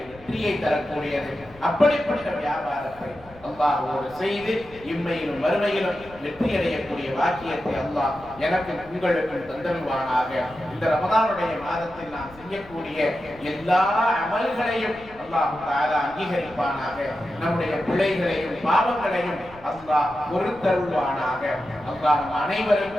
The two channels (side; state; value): left; noise; rumble, 23 dB below the sound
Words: வெற்றியை தரக்கூடியது. அப்படிப்பட்ட வியாபாரத்தை அல்லாஹ்வோடு செய்து இம்மையிலும் வறுமையிலும் வெற்றி அடையக்கூடிய வாக்கியத்தை அல்லாஹ் எனக்கு உங்களுக்கும் தந்தருவானாக. இந்த ரமதானுடைய மாதத்தில் நாம் செய்யக்கூடிய எல்லா அமல்களையும் அல்லாஹ் தஆலா அங்கீகரிப்பானாக. நம்முடைய பிழைகளையும் பாவங்களையும் அல்லாஹ் பொறுத்தருள்வானாக. அல்லாஹ் நம்